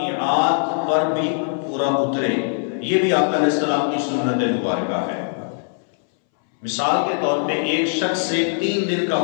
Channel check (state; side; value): silent; right; 65 dB below the other